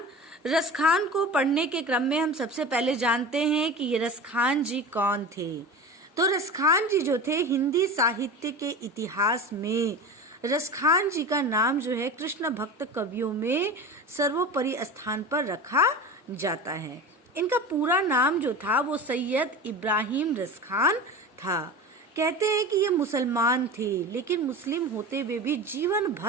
रसखान को पढ़ने के क्रम में हम सबसे पहले जानते हैं कि ये रसखान जी कौन थे। तो रसखान जी जो थे, हिंदी साहित्य के इतिहास में रसखान जी का नाम जो है कृष्ण भक्त कवियों में सर्वोपरि स्थान पर रखा जाता है। इनका पूरा नाम जो था वो सैयद इब्राहिम रसखान था। कहते हैं कि ये मुसलमान थे, लेकिन मुस्लिम होते हुए भी जीवन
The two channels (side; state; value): both; normal; correlation 0.31